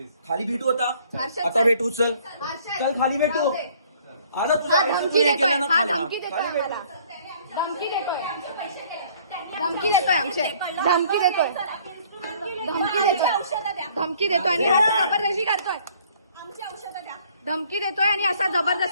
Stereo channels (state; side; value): inverted; both; correlation -0.58